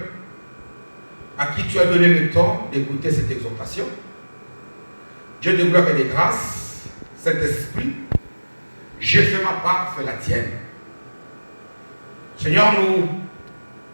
à qui tu as donné le temps d'écouter cette exhortation. Dieu de gloire et de grâce, Saint-Esprit, j'ai fait ma part, fais la tienne. Seigneur, nous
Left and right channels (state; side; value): inverted; both; correlation -1.00